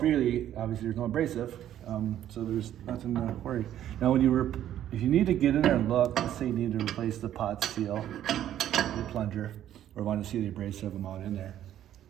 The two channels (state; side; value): quieter; left; 11.5 dB